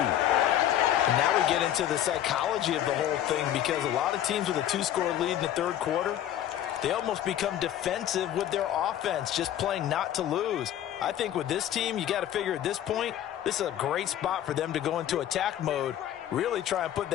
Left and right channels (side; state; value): right; quieter; 11.4 dB